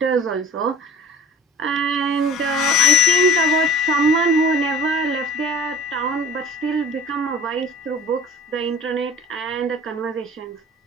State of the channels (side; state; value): both; normal; correlation 0.44